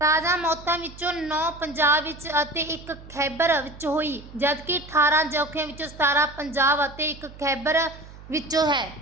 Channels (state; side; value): noise; right; hum, 18 dB below the sound